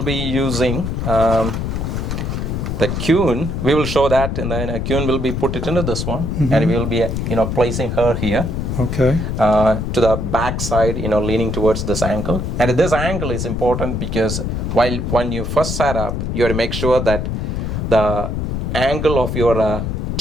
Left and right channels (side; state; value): left; noise; rumble, 2 dB below the sound